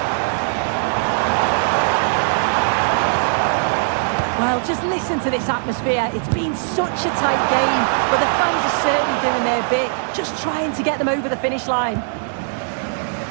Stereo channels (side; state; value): left; silent; digital silence